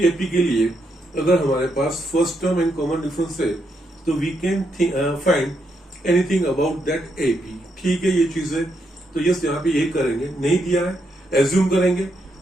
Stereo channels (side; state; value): both; normal; correlation 0.79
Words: एपी के लिए अगर हमारे पास first term and common difference है, तो we can find anything about that AP. ठीक है, ये चीज है। तो यस यहाँ पे ये करेंगे, नहीं दिया है एज्यूम करेंगे,